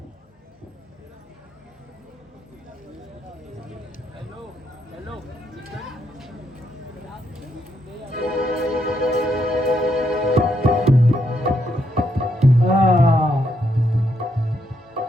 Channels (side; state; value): both; normal; correlation 0.77